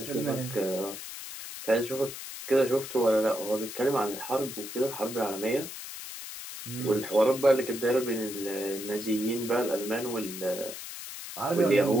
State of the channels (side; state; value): left; noise; hiss, 10 dB below the sound